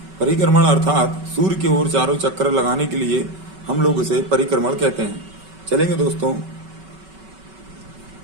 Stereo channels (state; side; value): late; left; 5.3 ms